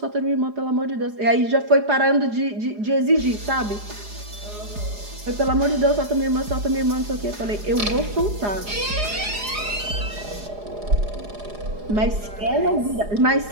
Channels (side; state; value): left; late; 4.8 ms